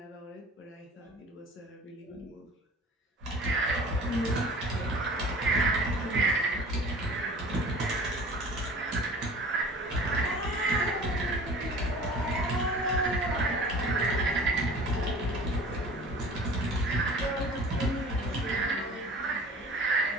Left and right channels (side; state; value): both; normal; correlation 0.43